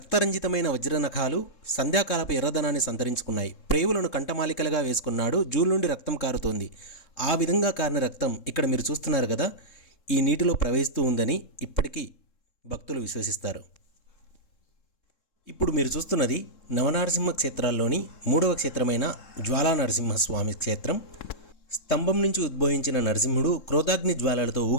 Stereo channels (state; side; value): late; right; 3.7 ms